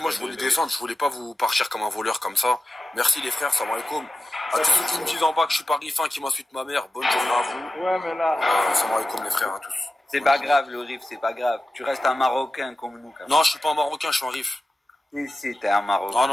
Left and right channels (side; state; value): both; normal; correlation 0.93